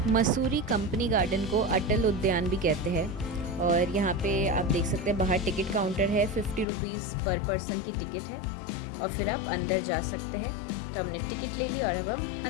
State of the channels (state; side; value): drops out; right; at 6.7 s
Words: Mussoorie company garden को अटल उद्यान भी कहते हैं। और यहाँ पे आप देख सकते हैं बाहर टिकट काउंटर है, 50 रुपीज़ पर पर्सन की टिकट है और फिर आप अंदर जा सकते हैं। तो हमने टिकट ले ली और अब हम